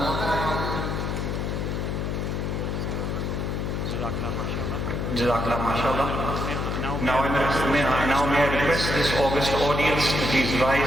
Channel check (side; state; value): left; noise; hum, 1 dB below the sound